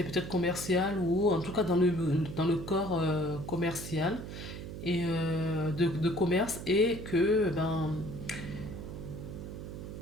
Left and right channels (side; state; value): right; noise; hum, 9 dB below the sound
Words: peut-être commercial ou en tout cas dans le corps commercial et de commerce et que ben,